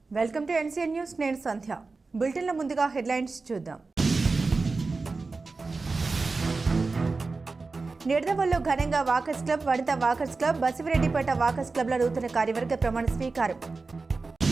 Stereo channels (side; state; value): left; quieter; 3.9 dB